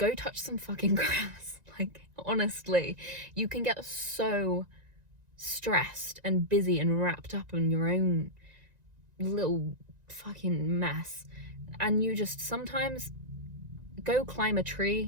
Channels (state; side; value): late; left; 1.9 ms